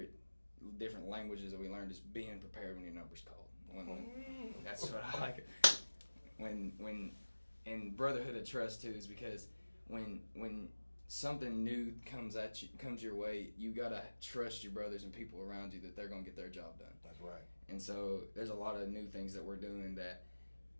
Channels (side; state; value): both; inverted; correlation -1.00